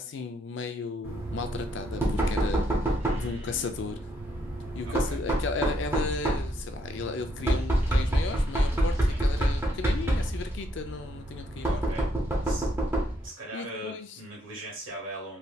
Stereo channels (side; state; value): both; normal; correlation 0.72